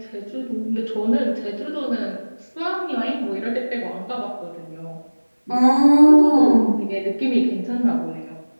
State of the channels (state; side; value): inverted; both; correlation -1.00